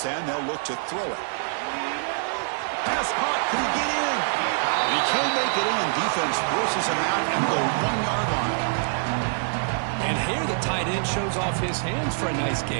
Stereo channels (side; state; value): left; silent; 62 dB below the other